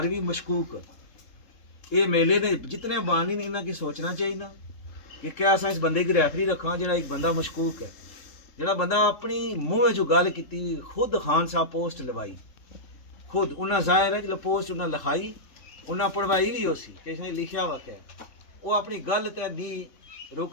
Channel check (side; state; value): right; late; 3.7 ms